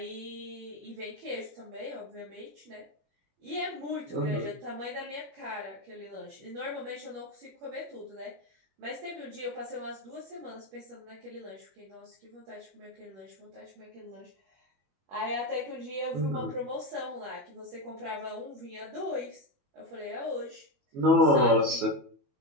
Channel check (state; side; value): late; left; 21 ms